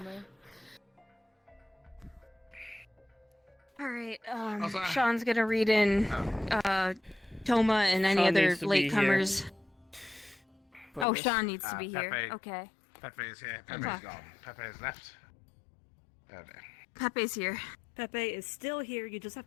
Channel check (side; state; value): right; drops out; at 11.1 s